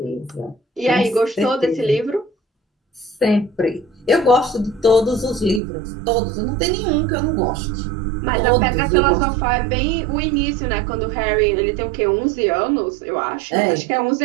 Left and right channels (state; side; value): drops out; left; at 5.6 s